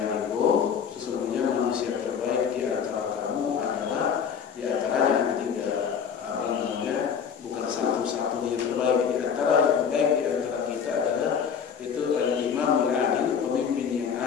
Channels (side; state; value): right; quieter; 7.2 dB